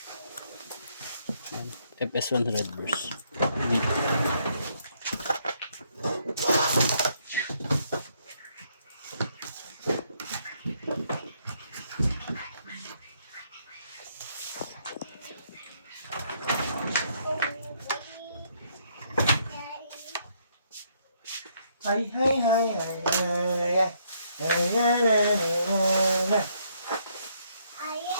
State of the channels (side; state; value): both; inverted; correlation -0.71